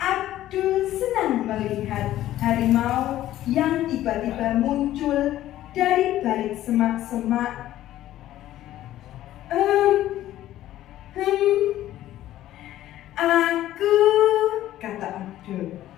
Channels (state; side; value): quieter; right; 13.7 dB